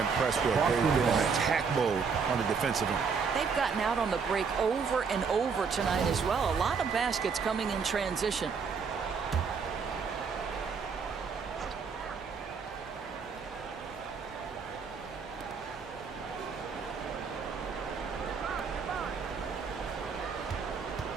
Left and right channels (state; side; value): quieter; left; 5.6 dB